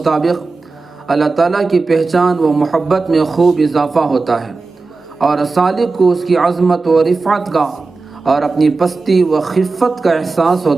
اللہ تعالیٰ کی پہچان و محبت میں خوب اضافہ ہوتا ہے، اور سالک کو اس کی عظمت و رفعت کا اور اپنی پستی و خفت کا احساس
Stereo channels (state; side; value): quieter; left; 3.9 dB